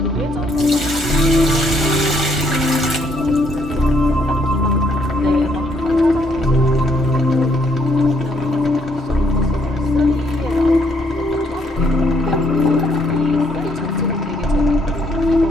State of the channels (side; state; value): both; normal; correlation 0.70